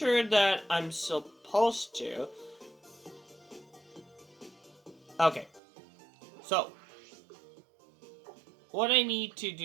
that I'm supposed to. Okay. So, what I need to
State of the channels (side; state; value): left; drops out; at 5.6 s